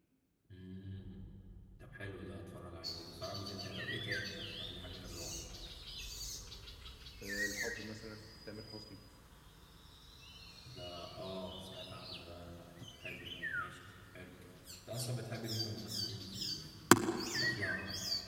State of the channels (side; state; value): both; identical; correlation 1.00